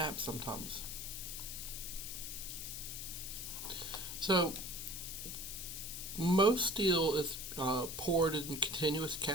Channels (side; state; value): left; noise; hiss, 6 dB below the sound